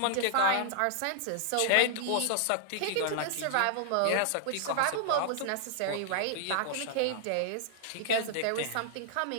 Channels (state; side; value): different; both; correlation -0.01